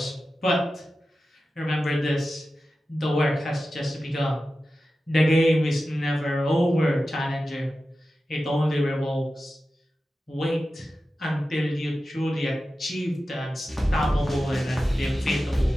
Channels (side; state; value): both; normal; correlation 0.93